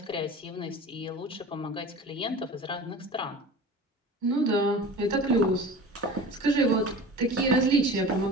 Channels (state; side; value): normal; both; correlation 0.37